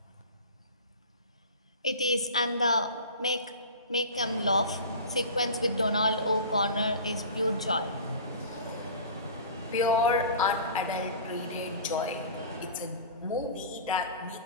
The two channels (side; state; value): both; inverted; correlation -0.37